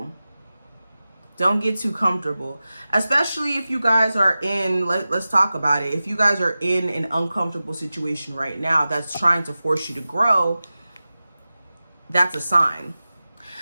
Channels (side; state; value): both; inverted; correlation -0.95